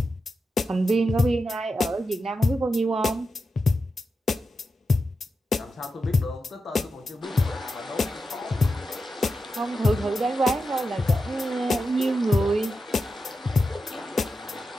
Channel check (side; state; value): both; normal; correlation 0.89